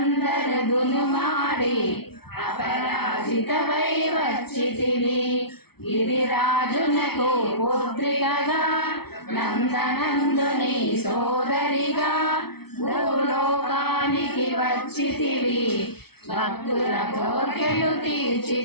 దునుమాడి అపరాజితవై వచ్చితివి. గిరిరాజునకు పుత్రికగా నందనందుని సోదరిగా భూలోకానికి వచ్చితివి. భక్తుల కోర్కెలు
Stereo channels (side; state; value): right; late; 0.96 ms